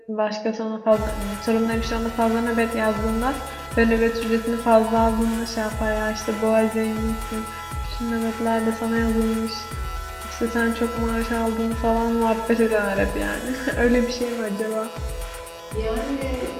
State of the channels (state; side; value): identical; both; correlation 1.00